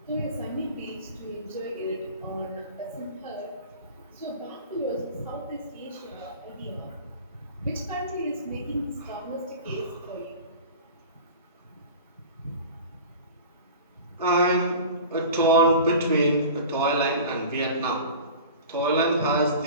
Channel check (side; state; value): both; inverted; correlation -0.37